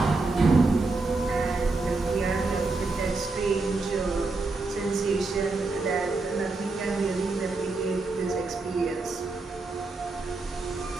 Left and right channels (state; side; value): quieter; left; 3.6 dB